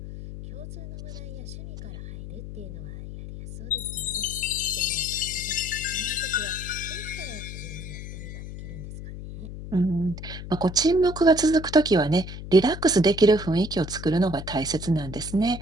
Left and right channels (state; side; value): noise; left; hum, 10 dB below the sound